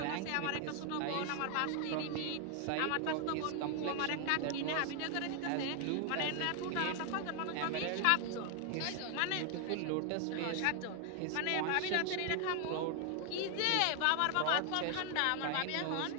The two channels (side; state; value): both; different; correlation 0.00